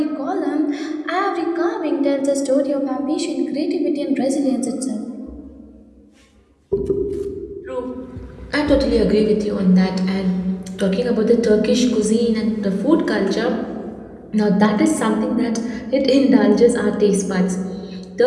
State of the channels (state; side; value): identical; both; correlation 1.00